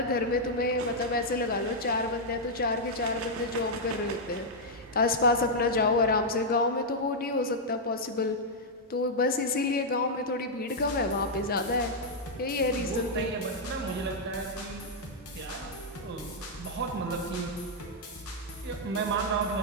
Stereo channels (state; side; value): normal; both; correlation -0.04